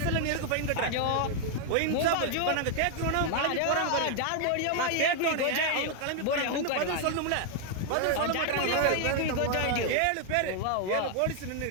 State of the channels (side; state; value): both; different; correlation 0.00